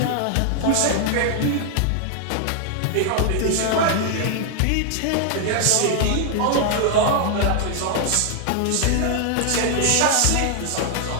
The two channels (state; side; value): different; both; correlation 0.00